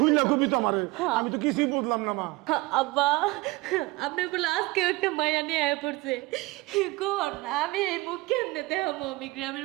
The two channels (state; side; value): quieter; left; 22.1 dB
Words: কবি তো আমারে, আমি তো কিছুই বুঝলাম না মা। আব্বা, আপনি বলে আজকে একটা মায়া নিয়ে আয় পড়ছে। কোন আমি এই মুখ কেমনে দেখাবো আমি